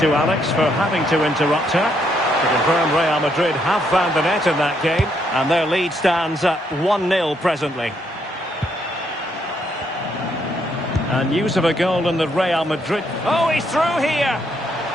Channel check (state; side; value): normal; both; correlation 0.74